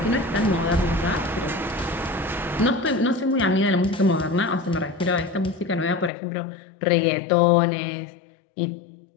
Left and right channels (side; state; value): right; drops out; at 6.1 s